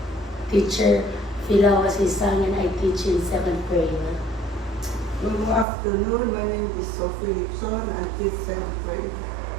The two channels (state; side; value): drops out; left; at 5.7 s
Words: Teacher Filawasisang and I teach in 7th grade. Good afternoon. My name is Sophie Lipson. I teach 7th grade.